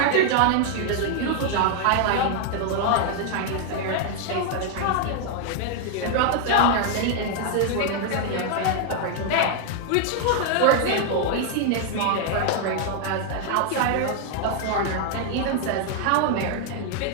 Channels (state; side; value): different; both; correlation 0.00